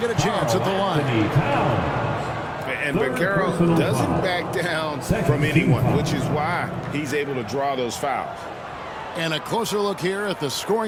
a chance at the line. And Bancaro doesn't back down from anyone, which is why he's able to draw those fouls. And a closer look here at the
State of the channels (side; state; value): both; identical; correlation 1.00